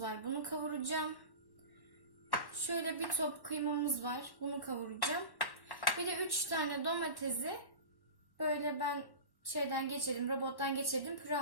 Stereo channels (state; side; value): late; right; 1.1 ms